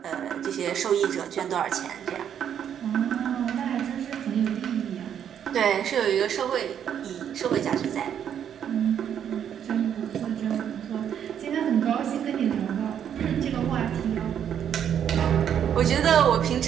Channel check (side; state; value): left; quieter; 9.0 dB